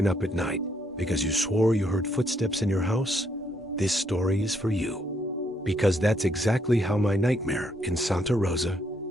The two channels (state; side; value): normal; both; correlation 0.72